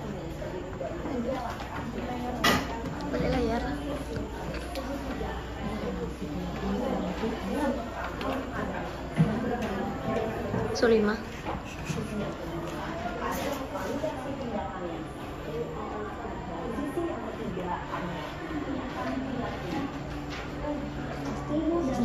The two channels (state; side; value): identical; both; correlation 1.00